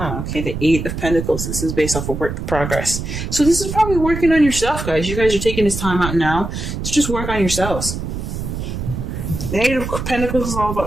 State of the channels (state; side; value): noise; right; rumble, 5 dB below the sound